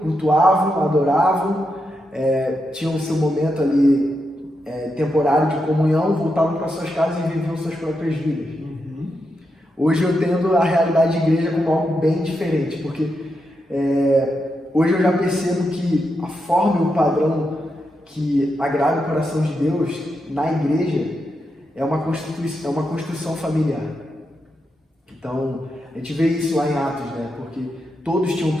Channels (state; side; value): normal; both; correlation 0.85